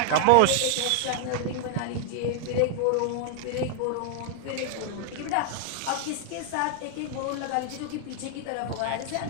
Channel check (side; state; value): both; different; correlation -0.01